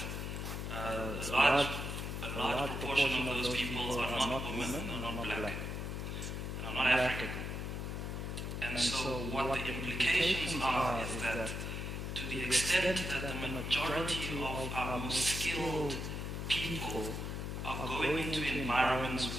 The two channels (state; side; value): noise; left; hum, 4 dB below the sound